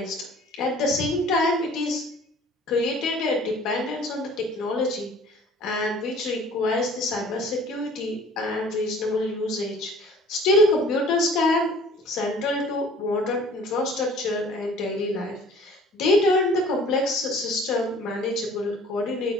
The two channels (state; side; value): normal; both; correlation 0.50